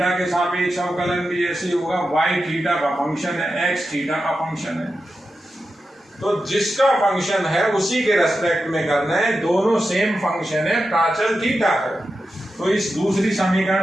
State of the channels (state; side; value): normal; both; correlation 0.90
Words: के सापेक्ष अवकलन भी ऐसे होगा, y थीटा का फंक्शन है, x थीटा का फंक्शन है, तो जिसका फंक्शन है उसी के रेस्पेक्ट में करना है, दोनों सेम फंक्शन है, प्राचल थीटा है। तो इस दूसरी